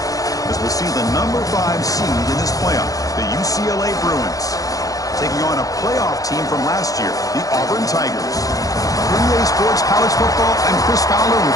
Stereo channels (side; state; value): right; late; 0.17 ms